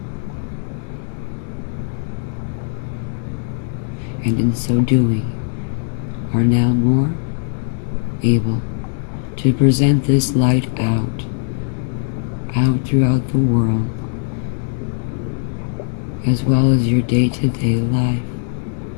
and in so doing are now more able to present this light out throughout the world, as well as your day-to-day life.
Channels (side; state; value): right; silent; digital silence